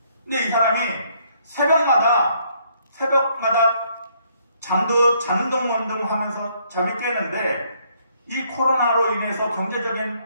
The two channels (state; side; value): inverted; both; correlation -0.68